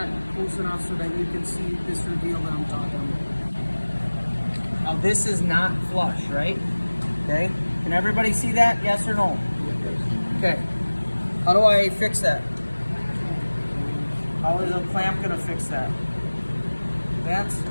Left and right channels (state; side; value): inverted; both; correlation -1.00